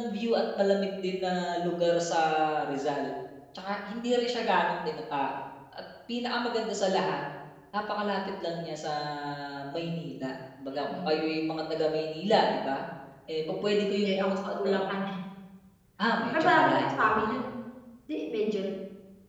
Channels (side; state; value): both; identical; correlation 1.00